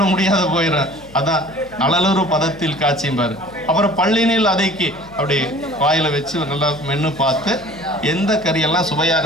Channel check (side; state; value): left; noise; hum, 23 dB below the sound